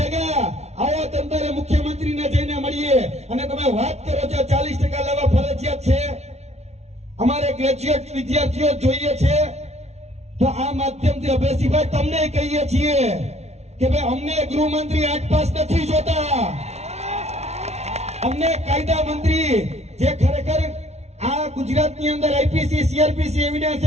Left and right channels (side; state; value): left; late; 0.31 ms